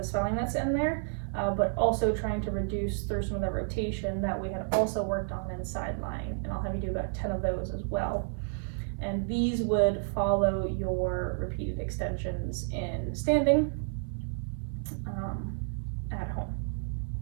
swelling that's in there, but also trying to reduce through some of the rotation that we had also worked on in side lying, and I'll have you do about 10 of those as well. And these would follow your repeated extensions in standing at home.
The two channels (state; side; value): silent; left; 57 dB below the other